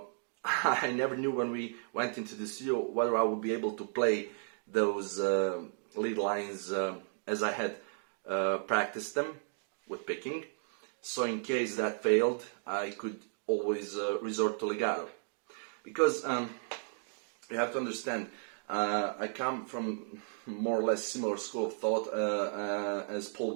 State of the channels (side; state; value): left; silent; digital silence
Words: I never knew when we went into the studio whether I would be able to play those lead lines as I had practiced them with picking. So in case that failed, I could always resort to legato. Because you have to understand, I come from more or less similar school of thought as Paul